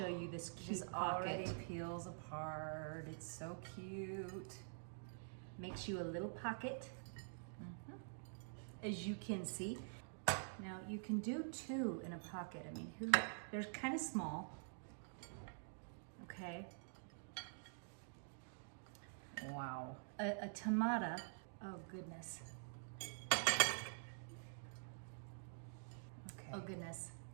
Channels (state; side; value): silent; left; digital silence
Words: you this cute This pocket. already peels apart. It's so cute. Makes you a little pocket, as you can see. Now you can do two in a pocket. I mean, they're kind of small. Okay. Wow. A tomato. Oh goodness. Okay. Oh goodness.